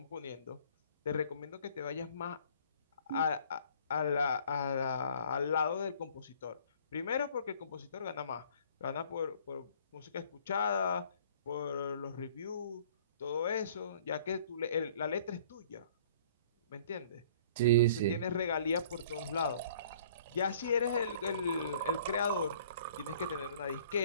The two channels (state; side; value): inverted; both; correlation -0.54